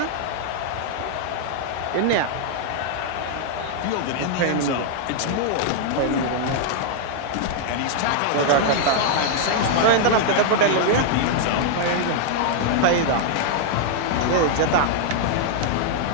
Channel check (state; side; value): different; both; correlation -0.01